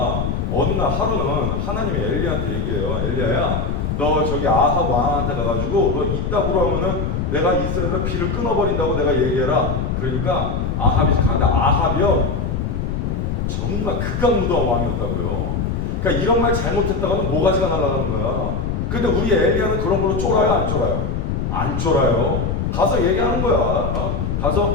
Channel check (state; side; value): noise; left; rumble, 1 dB below the sound